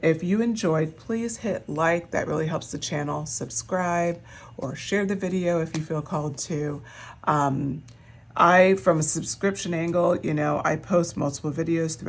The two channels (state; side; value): identical; both; correlation 1.00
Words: If you enjoyed, please hit like. That really helps the channel. Subscribe or share the video if you feel called to. From a subscription angle, I post multiple videos